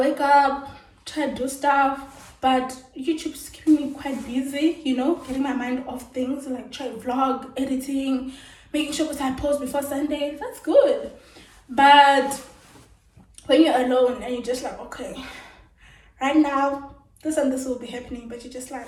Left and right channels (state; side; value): identical; both; correlation 1.00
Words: up, try to do stuff, but YouTube's keeping me quite busy, you know, getting my mind off things, like try vlog, editing, making sure that I post before Sunday. That's good. But when you're alone and you're just like, okay, right now, this and this will be happening, but you're just like,